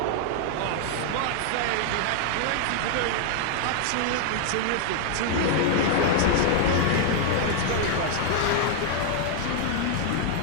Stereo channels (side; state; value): both; different; correlation 0.00